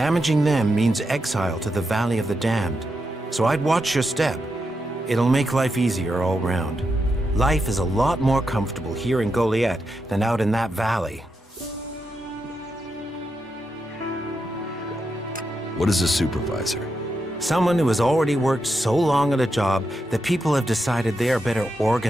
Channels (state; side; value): normal; both; correlation 0.85